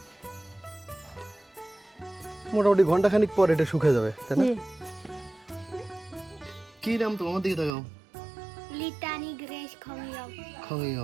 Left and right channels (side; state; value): left; drops out; at 7.8 s